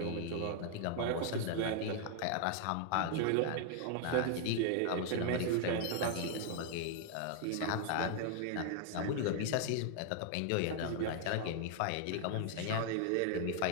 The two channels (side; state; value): both; different; correlation 0.00